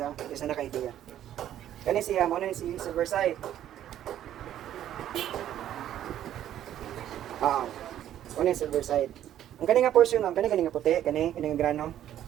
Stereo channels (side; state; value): left; quieter; 11.5 dB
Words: ha, kasi naka-idea. Kani siya, mo na si Silverside. Ano yung Silverside. Ang kani nga portion ma'am, kani nga puti, kani nga grano.